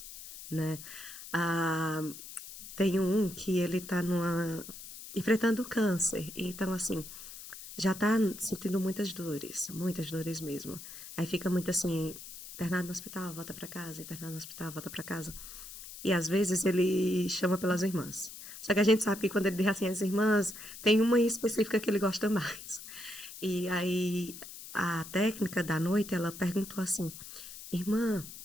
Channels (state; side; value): noise; left; hiss, 13 dB below the sound